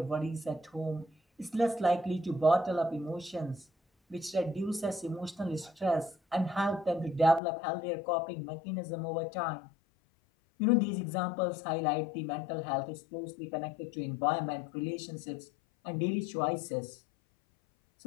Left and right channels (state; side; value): drops out; right; at 7.4 s